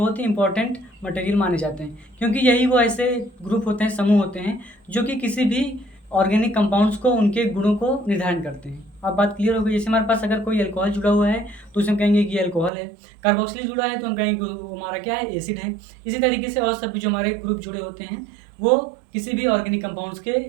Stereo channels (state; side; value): drops out; left; at 12.7 s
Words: ही इंपॉर्टेंट मटेरियल माने जाते हैं, क्योंकि यही वो ऐसे ग्रुप होते हैं, समूह होते हैं जो कि किसी भी ऑर्गेनिक कंपाउंड्स को, उनके गुणों को निर्धारण करते हैं। अब बात क्लियर हो गई। जैसे हमारे पास अगर कोई अल्कोहल जुड़ा हुआ है तो उसे हम कहेंगे कि अल्कोहल है। कार्बोक्सिलिक जुड़ा है तो हम कहेंगे कि वो हमारा क्या है, एसिड है। इसी तरीके से और सभी जो हमारे ग्रुप जुड़े होते हैं वो किसी भी ऑर्गेनिक कंपाउंड्स के